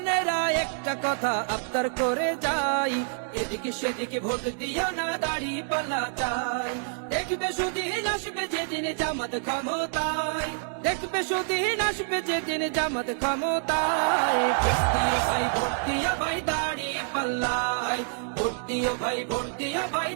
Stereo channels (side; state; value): left; silent; digital silence